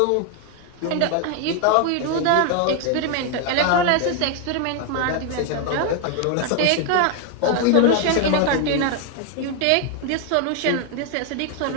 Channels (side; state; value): both; different; correlation 0.01